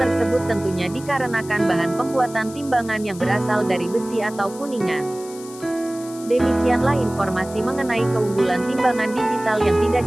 tentunya dikarenakan bahan pembuatan timbangan yang berasal dari besi atau kuningan. Demikianlah informasi mengenai keunggulan timbangan digital yang tidak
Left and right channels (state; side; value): noise; left; hiss, 18 dB below the sound